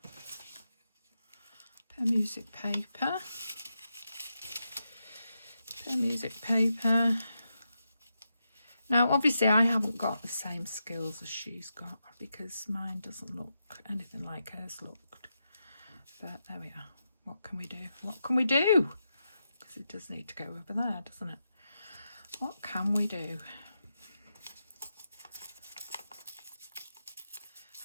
Music paper. Music paper. Now, obviously, I haven't got the same skills as she's got, because mine doesn't look anything like hers looked. But there we are. What can we do? What can we do? Because it does need to go over there, doesn't it? What can we do?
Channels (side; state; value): both; inverted; correlation -0.86